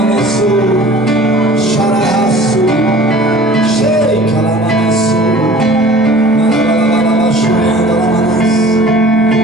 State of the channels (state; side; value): normal; both; correlation 0.46